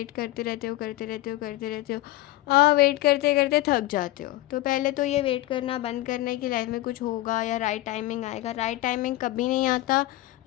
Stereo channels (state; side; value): quieter; right; 17.1 dB